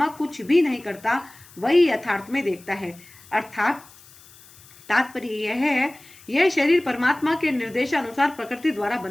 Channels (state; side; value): noise; left; hiss, 23 dB below the sound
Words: कुछ भी नहीं करता वही यथार्थ में देखता है। अर्थात तात्पर्य यह है, यह शरीर परमात्मा के निर्देशानुसार प्रकृति द्वारा